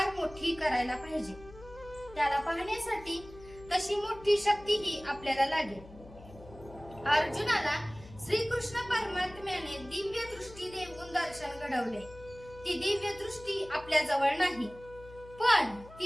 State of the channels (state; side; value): noise; left; hum, 19 dB below the sound